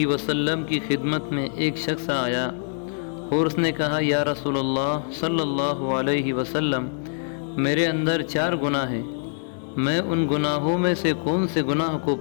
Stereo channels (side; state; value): right; silent; 62 dB below the other